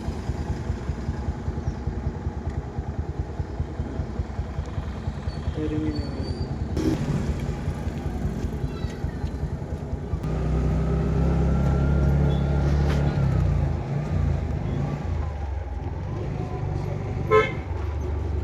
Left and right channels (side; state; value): both; identical; correlation 1.00